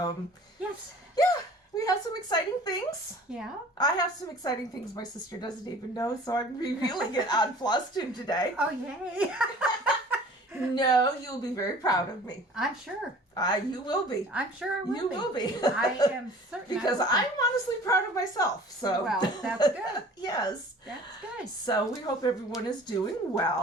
yes. Yeah, we have some exciting things. Yeah. I have some exciting things my sister doesn't even know, so I'm revealing it on Flosstube today. Oh, yay. No, you'll be very proud of me. I'm sure. You will be. I'm sure I will You be. will be. I am certain. Because I'm honestly proud of myself. So Well, that's good. Yes. That's good. So we hope everyone is doing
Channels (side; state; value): both; normal; correlation 0.47